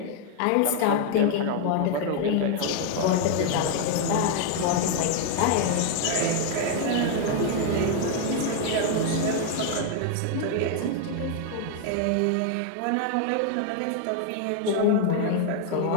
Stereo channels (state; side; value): different; both; correlation 0.00